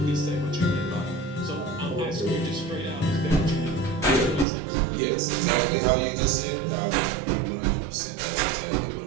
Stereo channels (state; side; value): drops out; left; at 4.5 s